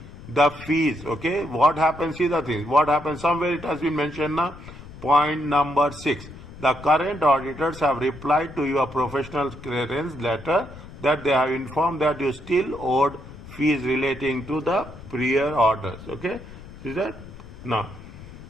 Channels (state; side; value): noise; left; rumble, 16 dB below the sound